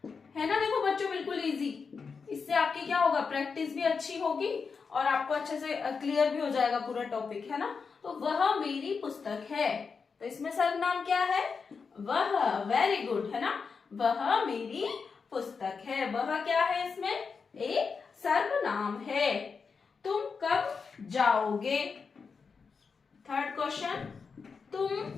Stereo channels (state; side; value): quieter; right; 5.3 dB